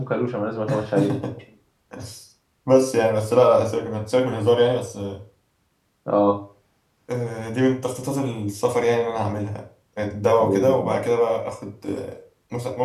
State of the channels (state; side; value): identical; both; correlation 1.00